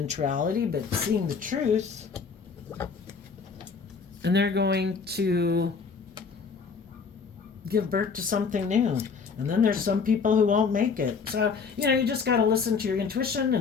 reality, but seeing the truth. And they're going to give birth to something new. And then there's some people who won't make it. So, you just got to listen to your intuition.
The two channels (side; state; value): right; quieter; 5.4 dB